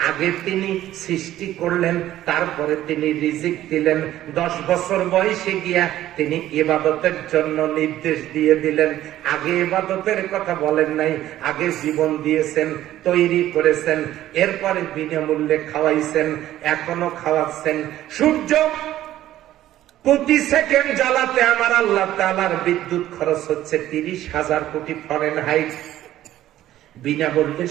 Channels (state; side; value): quieter; left; 13.5 dB